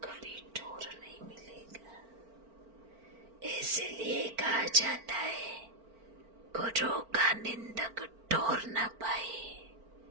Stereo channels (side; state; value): left; late; 4.4 ms